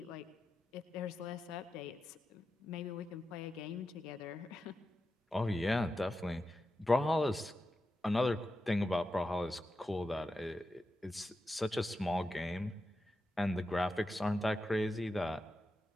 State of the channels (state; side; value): normal; both; correlation 0.90